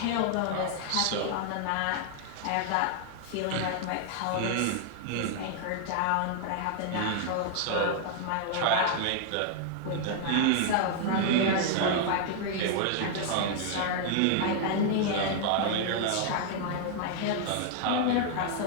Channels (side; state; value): both; different; correlation 0.00